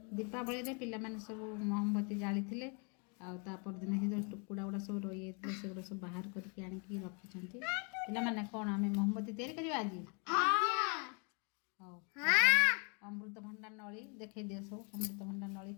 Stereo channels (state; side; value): quieter; right; 35.6 dB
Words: दीपावली पिलाने सब महमबती जाली थे दिन से जो टुकुड़ा गुड़ा सब रही है से सब बाहर करके आनिकी रखी पिलाने कौन आम महमबती तैयारी करवा आज अमृतभंडा नली देखे दिए सब अमृतभंडा नली